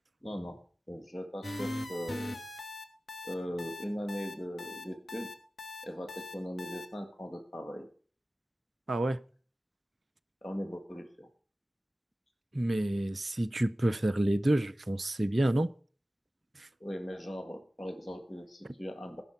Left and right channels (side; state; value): both; normal; correlation 0.96